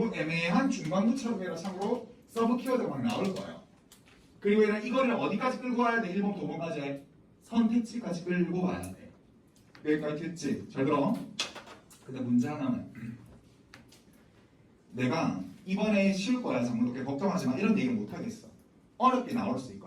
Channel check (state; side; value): identical; both; correlation 1.00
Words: 애매한 중간부처럼 해라 참고로 서브 키워드가 막 나올 거예요. 그리고 얘는 이거를 어디까지 끌고 와야 돼? 1번부터 5번까지 선택지까지 끌고 와야 돼. 여기까지 됐지? 잘 들어. 근데 문제 하나는 내가 이번에 쉬울 거야 장문독해 걱정하지 마 이런 얘기는 못 하겠어. 어렵게 나올 수